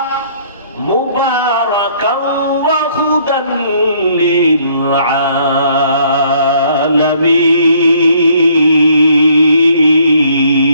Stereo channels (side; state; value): both; inverted; correlation -0.63